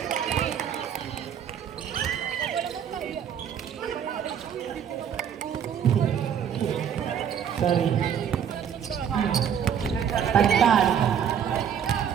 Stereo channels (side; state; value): left; quieter; 8.5 dB